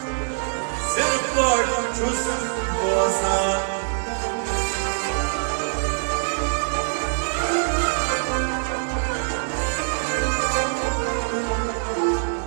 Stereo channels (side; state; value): left; silent; 63 dB below the other